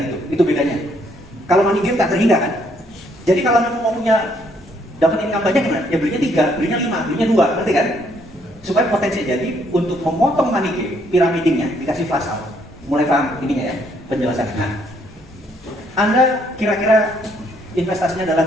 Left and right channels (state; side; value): noise; left; hum, 29 dB below the sound